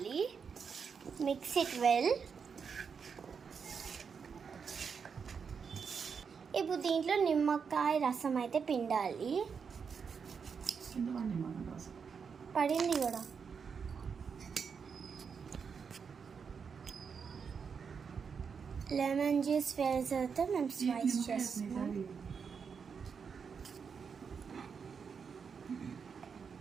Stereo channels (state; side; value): quieter; left; 6.2 dB